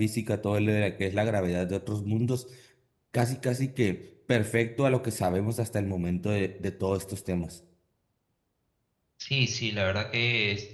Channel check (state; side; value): identical; both; correlation 1.00